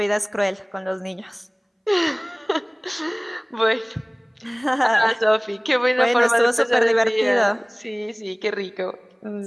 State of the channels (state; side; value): identical; both; correlation 1.00